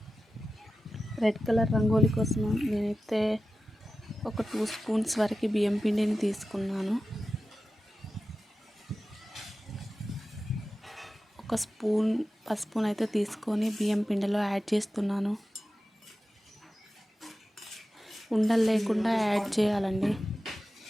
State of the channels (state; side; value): normal; both; correlation 0.94